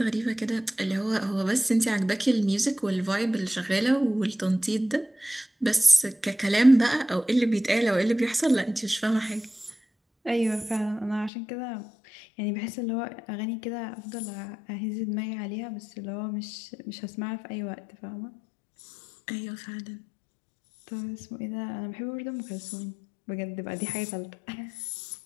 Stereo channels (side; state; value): right; drops out; at 11.3 s